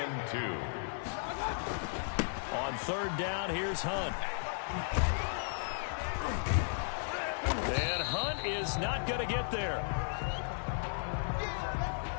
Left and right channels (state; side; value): silent; right; digital silence